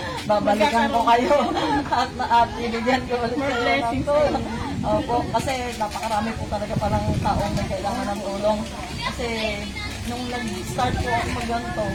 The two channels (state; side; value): identical; both; correlation 1.00